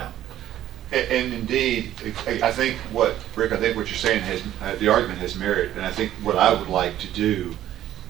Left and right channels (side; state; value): left; quieter; 12.5 dB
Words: And indeed, I think Rick, I think what you're saying the argument has merit, and I think what I would like to do